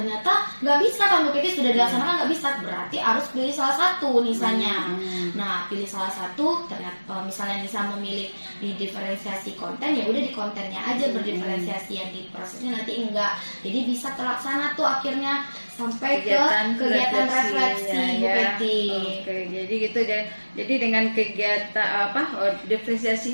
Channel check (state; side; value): inverted; both; correlation -1.00